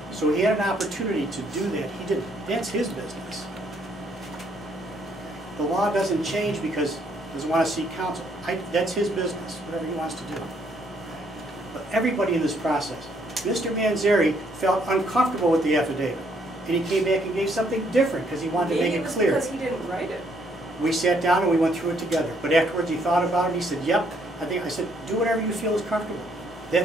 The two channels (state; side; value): normal; both; correlation 0.69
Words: So he had an opportunity to do that. He didn't. That's his business. The law doesn't change because he doesn't want to seek counsel. That's his business, whatever he wants to do. But everybody in this process, Mr. Manzari felt uncomfortable with the affidavit. And he came back and gave something different because he wanted to make Maybe it it was clear. because he didn't write it. We sat down and we went through it together. But afterwards he thought about it and he said, yep, I said, do whatever you feel is comfortable.